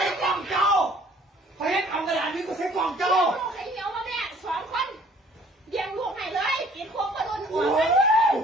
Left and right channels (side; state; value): both; normal; correlation 0.56